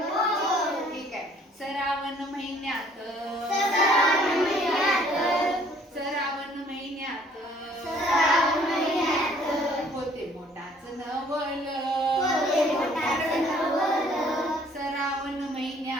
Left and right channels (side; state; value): both; normal; correlation 0.59